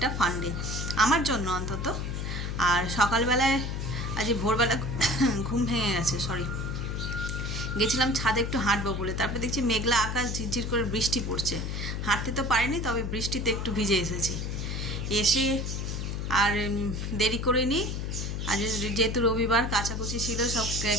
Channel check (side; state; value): left; noise; hum, 3 dB below the sound